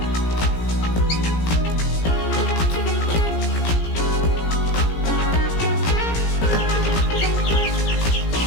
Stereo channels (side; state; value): right; late; 17 ms